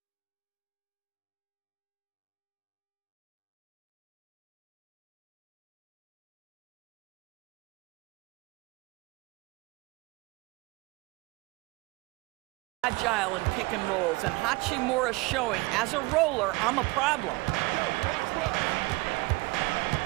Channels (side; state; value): left; quieter; 23.2 dB